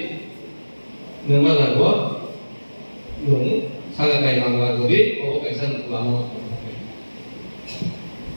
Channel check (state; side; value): inverted; both; correlation -1.00